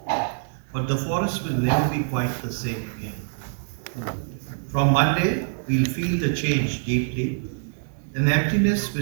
But the forest will never be quite the same again. From Monday, we'll feel the change deeply. An emptiness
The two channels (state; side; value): silent; left; digital silence